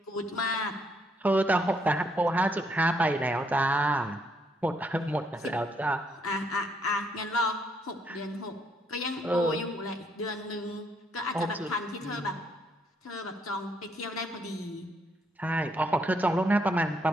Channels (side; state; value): both; normal; correlation 0.72